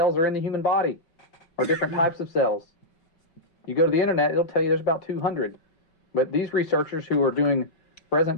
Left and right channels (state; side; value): late; right; 5.3 ms